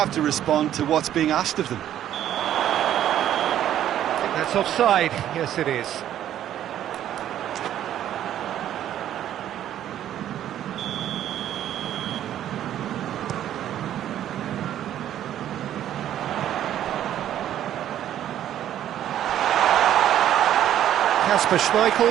to respond to what's being asked of them. I think that's offside. Yes, it is. Kasper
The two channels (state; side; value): quieter; left; 11.3 dB